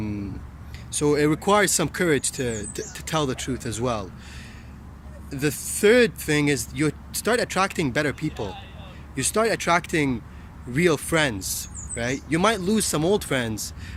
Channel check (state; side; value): identical; both; correlation 1.00